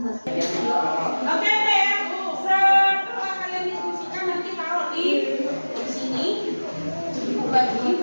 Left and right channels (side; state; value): both; inverted; correlation -1.00